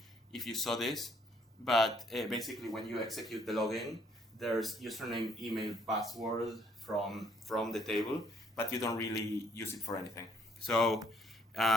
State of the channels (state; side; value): normal; both; correlation 0.66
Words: you saw this, but basically when you execute the login, there's username, email, password from the table, but you don't really use it for anything. So